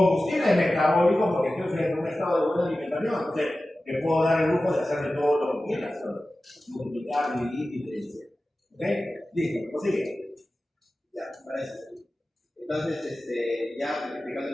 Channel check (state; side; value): normal; both; correlation 0.95